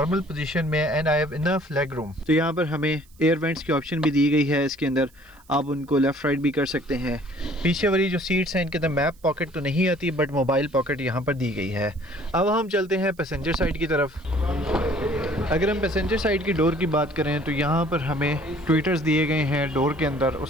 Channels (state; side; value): noise; right; hiss, 30 dB below the sound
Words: पोजीशन में है and I have enough leg room. तो यहाँ पर हमें एयर वेंट्स की ऑप्शन भी दी गई है। इसके अंदर आप उनको लेफ्ट राइट भी कर सकते हैं। पीछे वाली जो सीट्स हैं इनके अंदर मैप पॉकेट तो नहीं आती, बट मोबाइल पॉकेट यहाँ पर दी गई है। अब हम चलते हैं पैसेंजर साइड की तरफ। अगर हम पैसेंजर साइड की डोर की बात करें तो यहाँ पर हमें ट्विटर्स दिए गए हैं डोर के अंदर।